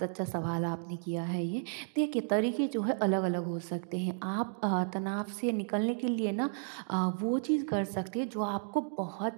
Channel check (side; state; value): left; silent; digital silence